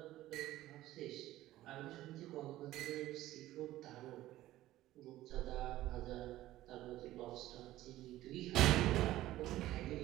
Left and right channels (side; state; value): left; quieter; 15.3 dB